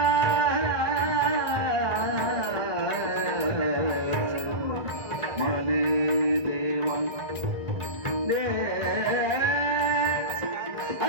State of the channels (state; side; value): late; left; 1.4 ms